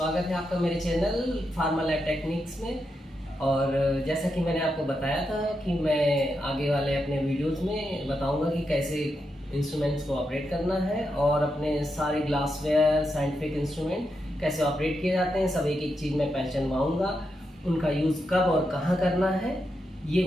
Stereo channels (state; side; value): normal; both; correlation 0.85